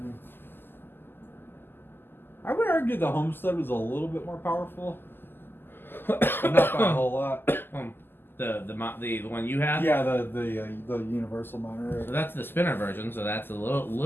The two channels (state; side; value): late; right; 0.098 ms